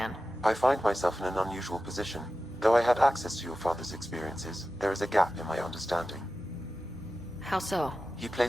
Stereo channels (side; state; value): both; normal; correlation 0.93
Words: I find myself in an unusual position. Though I had access to your father's experiences, there is a gap in my understanding. How so? He